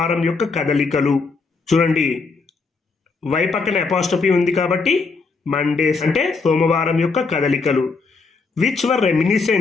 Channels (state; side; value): quieter; right; 4.4 dB